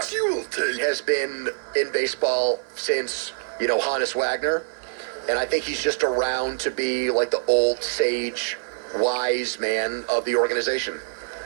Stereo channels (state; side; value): silent; left; digital silence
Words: been in baseball since, Hannes Wagner. And I think he's just around to be like the old sage, wise man of the organization.